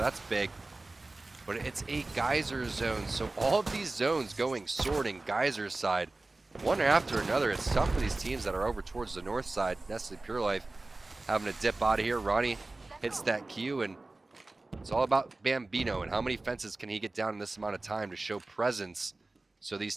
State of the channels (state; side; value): quieter; left; 3.1 dB